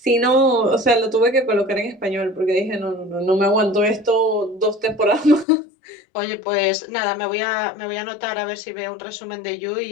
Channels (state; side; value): drops out; right; at 5.5 s